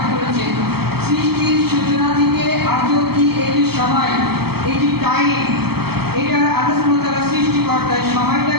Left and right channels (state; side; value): late; left; 0.96 ms